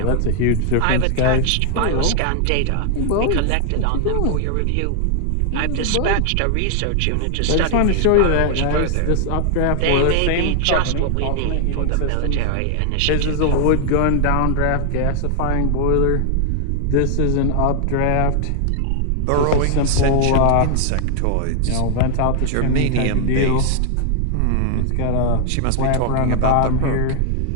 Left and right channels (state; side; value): different; both; correlation 0.00